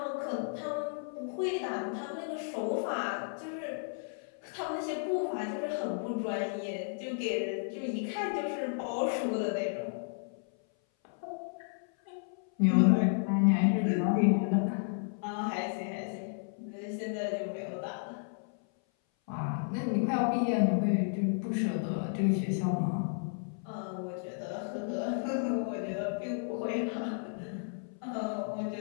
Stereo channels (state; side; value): silent; right; 56 dB below the other